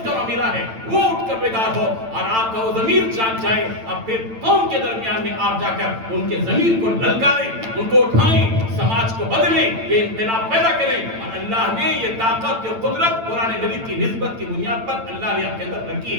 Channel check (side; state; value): left; late; 8.9 ms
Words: کا معاملہ ہے وہ اٹھ کر بیدار ہو اور آپ کا وہ ضمیر جاگ جائے. اب پھر قوم کے درمیان میں آپ جا کر ان کے ضمیر کو للکاریں, ان کو اٹھائیں, سماج کو بدلیں, یہ انقلاب پیدا کریں. اور اللہ نے یہ طاقت اور قدرت قرآن مجید کی نسبت کی بنیاد پر اللہ نے آپ کے اندر رکھی